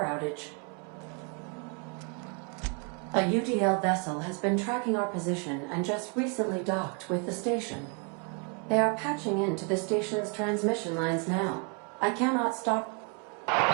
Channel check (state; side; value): quieter; left; 36.2 dB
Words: outage. A UDL vessel has been tracking our position and just recently docked with the station. They are patching into the station's transmission lines now. I cannot stop.